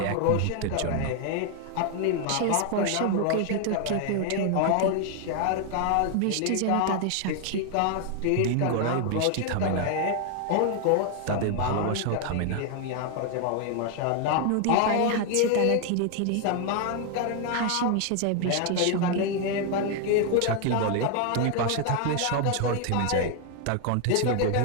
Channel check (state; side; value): different; both; correlation 0.00